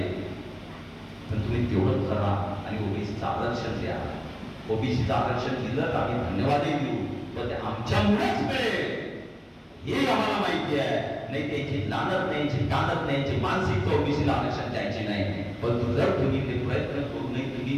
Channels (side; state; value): both; identical; correlation 1.00